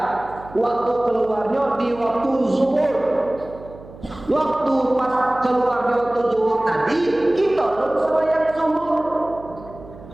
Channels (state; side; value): noise; right; hum, 18 dB below the sound